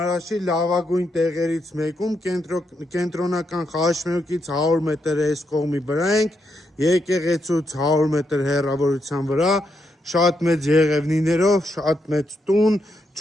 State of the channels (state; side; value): normal; both; correlation 0.80